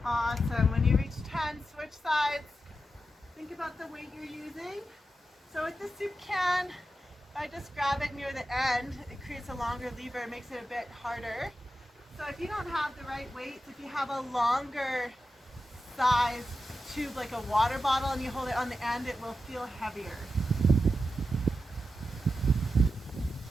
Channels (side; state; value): both; normal; correlation 0.90